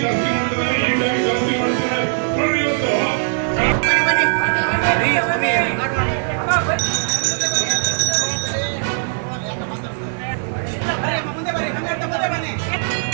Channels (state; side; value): silent; left; digital silence